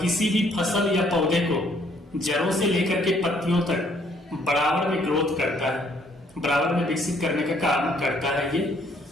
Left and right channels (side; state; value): both; normal; correlation 0.65